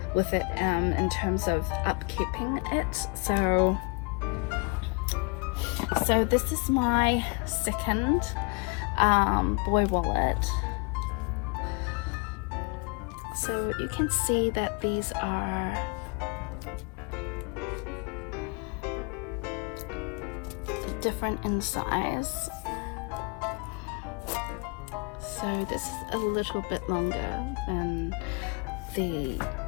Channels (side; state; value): right; quieter; 31.6 dB